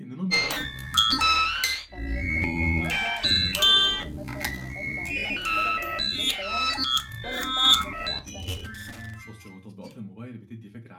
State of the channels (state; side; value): identical; both; correlation 1.00